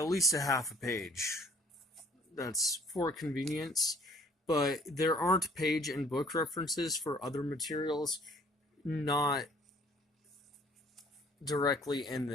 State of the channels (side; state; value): both; normal; correlation 0.57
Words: least a half a page. That's for convenience. But there aren't page and book references for other materials not directly in